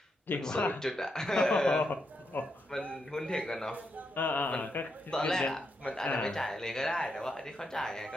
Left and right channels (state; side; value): normal; both; correlation 0.82